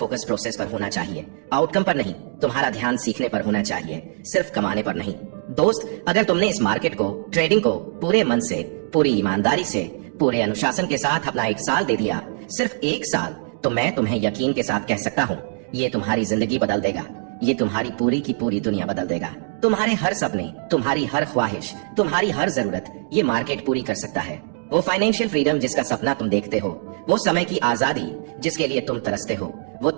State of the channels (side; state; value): left; silent; digital silence